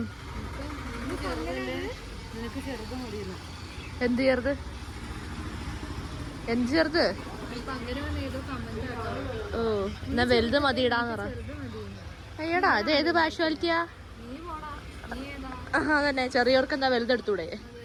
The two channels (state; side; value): identical; both; correlation 1.00